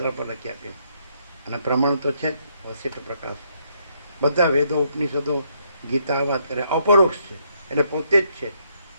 પર લખી આપીએ. અને પ્રમાણ તો છે જ, વસિષ્ઠ પ્રકાશ. બધા વેદો, ઉપનિષદો, ગીતા વાત કરે, અપરોક્ષ છે. એટલે પોતે જ છે.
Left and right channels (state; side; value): inverted; both; correlation -0.73